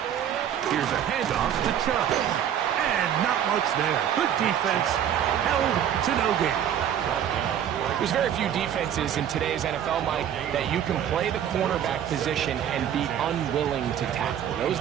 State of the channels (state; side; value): quieter; left; 9.7 dB